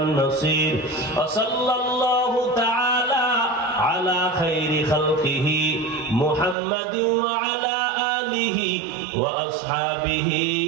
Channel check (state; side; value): drops out; left; at 6.6 s